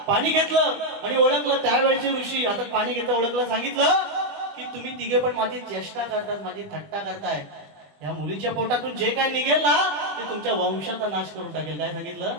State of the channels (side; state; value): left; late; 21 ms